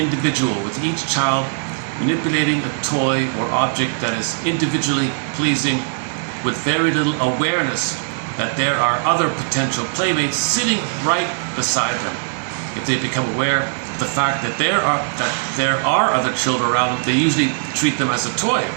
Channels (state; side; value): silent; left; digital silence